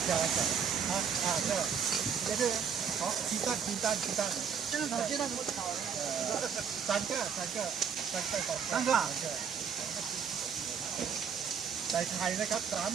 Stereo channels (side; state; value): left; quieter; 7.0 dB